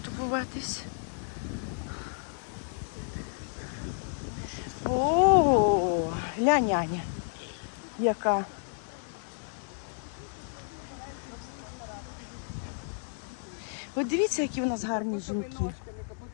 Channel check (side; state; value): right; silent; 57 dB below the other